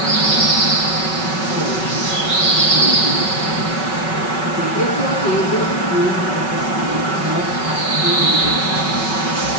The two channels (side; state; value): right; late; 5.3 ms